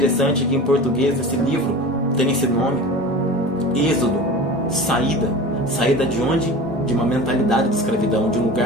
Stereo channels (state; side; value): normal; both; correlation 0.35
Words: que em português esse livro tem esse nome: Êxodo, saída. Saída de onde? De uma mentalidade de escravidão, de um